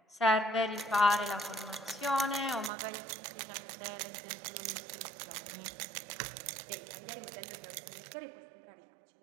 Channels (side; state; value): left; drops out; at 2.7 s